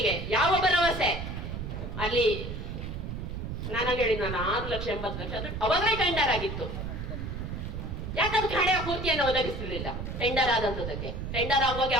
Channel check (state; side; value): noise; right; rumble, 5 dB below the sound